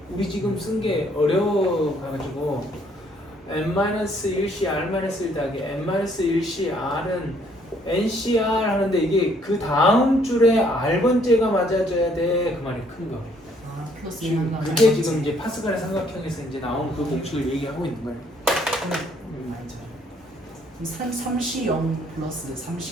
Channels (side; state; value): both; normal; correlation 0.65